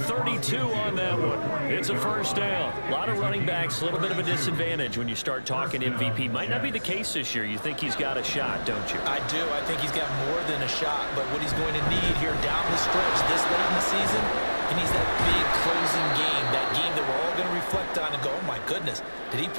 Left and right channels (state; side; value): inverted; both; correlation -1.00